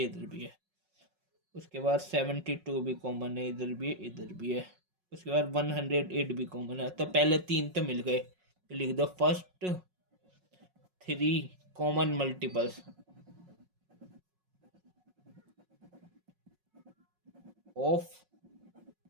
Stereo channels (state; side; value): late; left; 5.5 ms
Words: इधर भी है। उसके बाद 72 भी कॉमन है, इधर भी है इधर भी है। उसके बाद 108 भी कॉमन है। तो पहले 3 तो मिल गए, तो लिख दो first 3 common multiples of